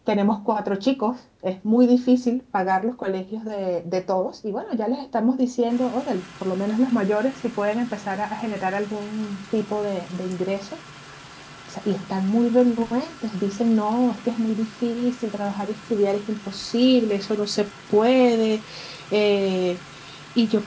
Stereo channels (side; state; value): both; identical; correlation 1.00